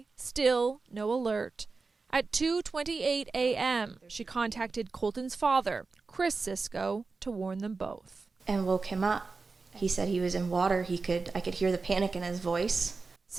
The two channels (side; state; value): left; quieter; 4.2 dB